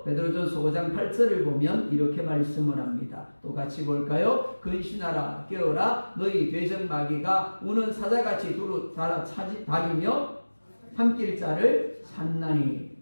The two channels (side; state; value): both; inverted; correlation -1.00